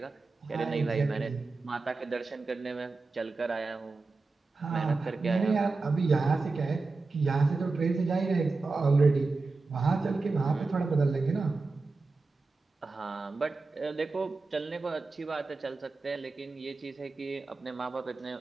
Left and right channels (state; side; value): quieter; left; 3.8 dB